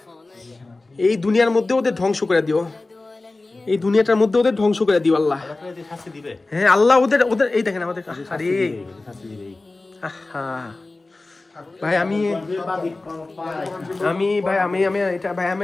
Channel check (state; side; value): quieter; right; 3.2 dB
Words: এই দুনিয়ার মধ্যে ওদের ধ্বংস করে দিও, এই দুনিয়াটার মধ্যে ওদের ধ্বংস করে দিও আল্লাহ। হ্যাঁ আল্লাহ ওদের ওদের এই দেখেন আমাদের আরে ভাই আমি ভাই আমি এটা ভাই আমি